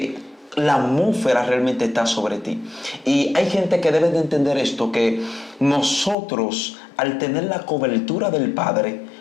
la atmósfera realmente está sobre ti. Y hay gente que debe de entender esto, que nosotros, al tener la cobertura del Padre,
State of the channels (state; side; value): drops out; right; at 6.2 s